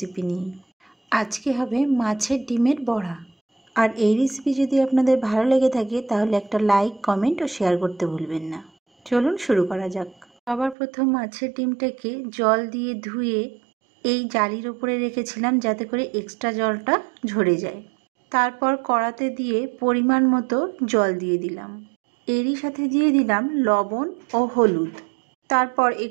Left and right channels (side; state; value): left; drops out; at 10.8 s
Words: নিয়ে। আজকে হবে মাছের ডিমের বড়া। আর এই রেসিপি যদি আপনাদের ভালো লেগে থাকে তাহলে একটা লাইক, কমেন্ট ও শেয়ার করতে ভুলবেন না। চলুন শুরু করা যাক। সবার প্রথম মাছের ডিমটাকে জল দিয়ে ধুয়ে এই জালির ওপরে রেখেছিলাম যাতে করে এক্সট্রা জলটা ঝরে যায়। তারপর কড়াতে দিয়ে পরিমাণ মতো জল দিয়ে দিলাম। এরই সাথে দিয়ে দিলাম লবণ ও হলুদ। তারপর